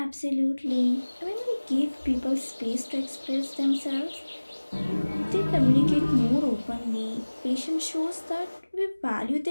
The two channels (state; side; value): inverted; both; correlation -1.00